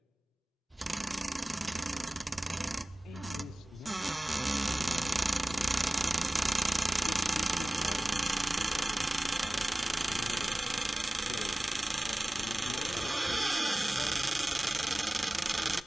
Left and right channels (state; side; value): normal; both; correlation 0.98